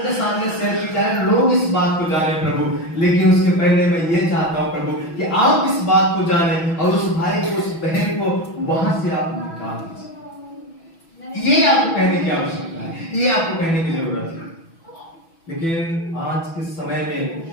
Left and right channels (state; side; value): late; right; 6.1 ms